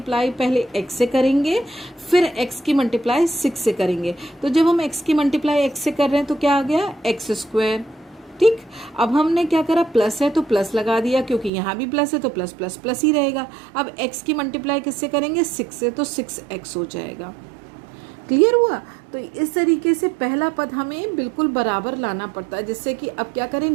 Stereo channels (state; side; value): drops out; left; at 11.5 s